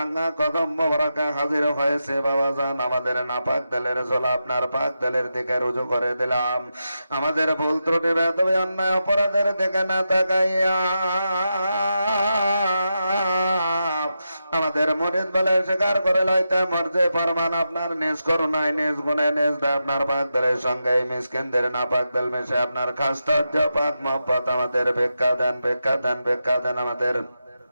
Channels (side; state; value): both; inverted; correlation -0.88